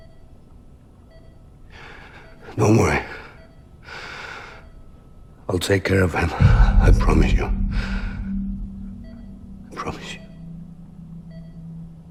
Don't worry. I'll take care of him. I promise you. I promise you.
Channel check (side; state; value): both; identical; correlation 1.00